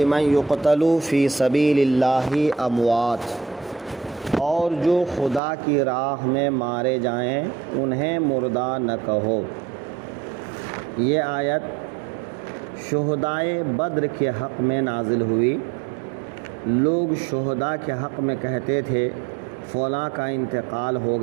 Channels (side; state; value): left; drops out; at 5.4 s